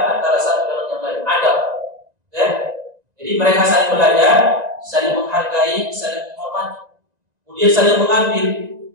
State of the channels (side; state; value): left; late; 2.0 ms